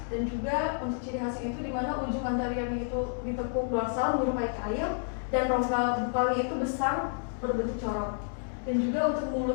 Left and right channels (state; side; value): silent; right; digital silence